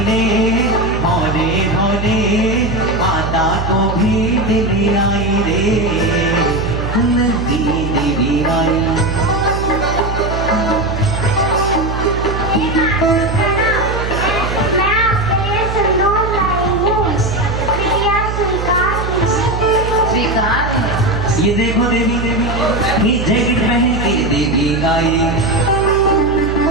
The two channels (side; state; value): right; noise; hum, 4 dB below the sound